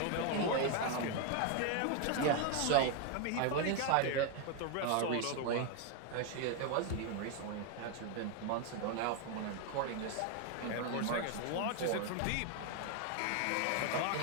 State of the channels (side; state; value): both; different; correlation 0.01